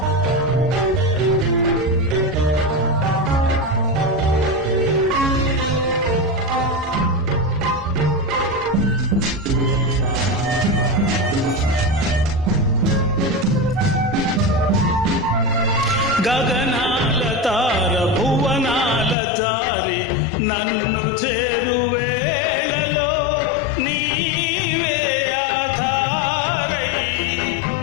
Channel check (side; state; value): right; drops out; at 19.2 s